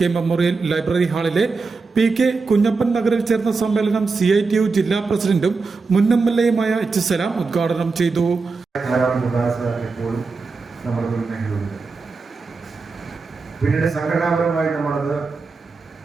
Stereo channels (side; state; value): left; quieter; 4.3 dB